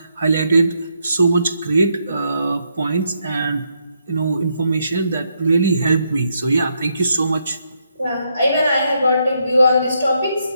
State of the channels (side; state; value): both; inverted; correlation -0.78